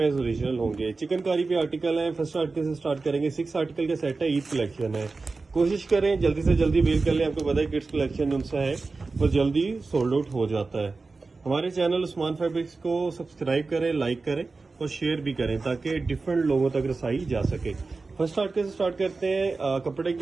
एज ओरिजिनल होंगे। चिकनकारी पे आर्टिकल है। फर्स्ट आर्टिकल से स्टार्ट करेंगे। 6 आर्टिकल का सेट है, ईद कलेक्शन है। कोशिश करें जल्दी से जल्दी वेल कर लें। आपको पता है किड्स कलेक्शन उनसा है वो जल्दी सोल्ड आउट हो जाता है। हमारे चैनल उस्मान फैब्रिक्स को सब्सक्राइब करें, लाइक करें और शेयर भी करें ताकि डिफरेंट लोगों तक रसाई जा सके। फर्स्ट आर्टिकल से स्टार्ट करते हैं। कपड़े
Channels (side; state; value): left; quieter; 3.9 dB